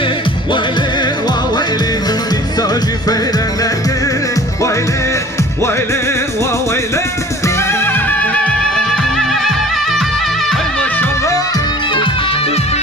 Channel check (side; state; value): both; normal; correlation 0.47